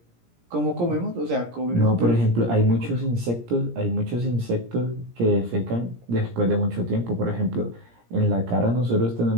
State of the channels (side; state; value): left; late; 17 ms